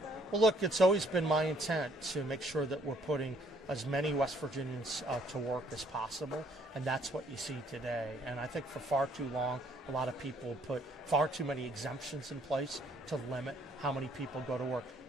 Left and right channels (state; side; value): normal; both; correlation 0.63